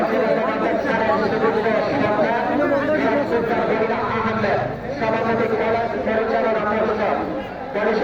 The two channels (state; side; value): identical; both; correlation 1.00